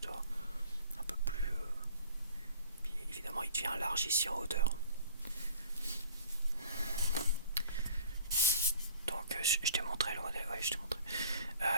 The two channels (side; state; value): both; inverted; correlation -0.50